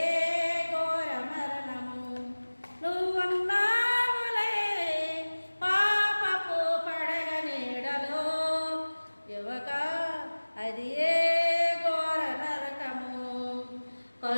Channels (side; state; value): both; inverted; correlation -1.00